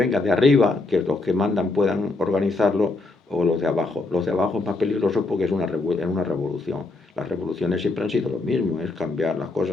de arriba, que los que mandan puedan organizarlo, o los de abajo. Los de abajo es más peligroso porque es una revolución. Las revoluciones siempre han sido lo mismo, es cambiar las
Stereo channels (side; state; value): right; quieter; 3.3 dB